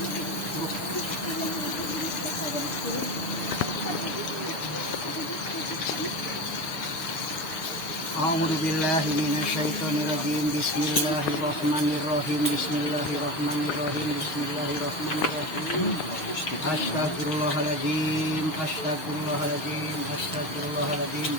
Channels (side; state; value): right; late; 6.4 ms